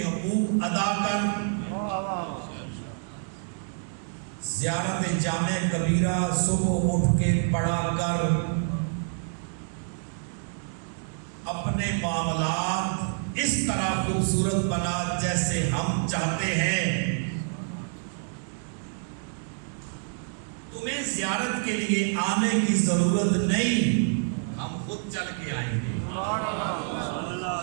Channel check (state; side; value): silent; left; 60 dB below the other